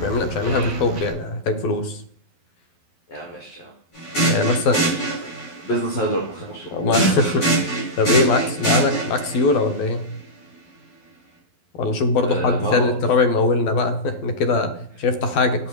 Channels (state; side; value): late; right; 12 ms